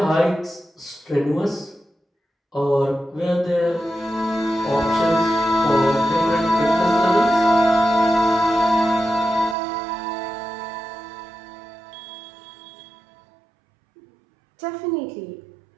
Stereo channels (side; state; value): left; drops out; at 9.6 s